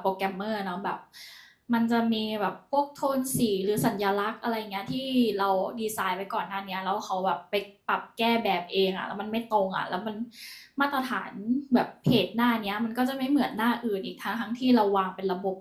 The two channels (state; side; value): identical; both; correlation 1.00